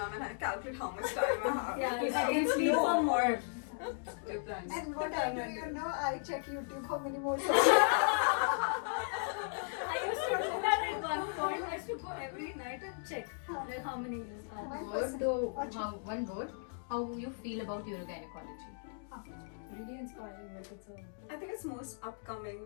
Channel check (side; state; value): right; silent; digital silence